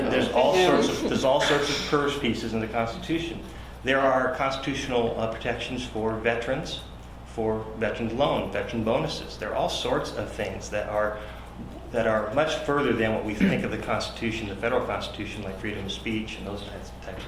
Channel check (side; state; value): both; identical; correlation 1.00